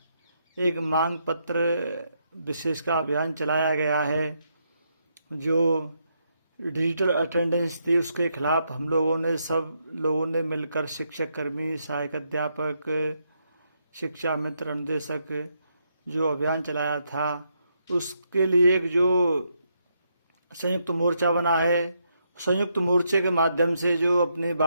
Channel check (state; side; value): inverted; both; correlation -0.79